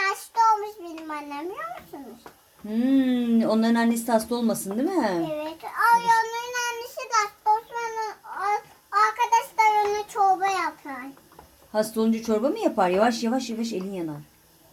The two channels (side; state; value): both; identical; correlation 1.00